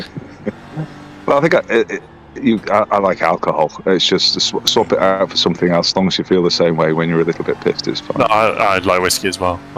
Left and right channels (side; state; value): both; identical; correlation 1.00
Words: Well, I think I like alcohol. It's just swap it out for something else. As long as you feel the same way when you're a little bit pissed, it's fine. No, I like whiskey as well.